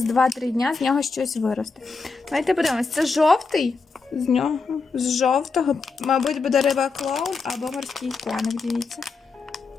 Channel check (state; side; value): quieter; right; 4.4 dB